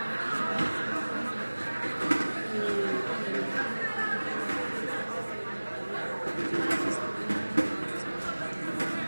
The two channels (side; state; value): both; inverted; correlation -1.00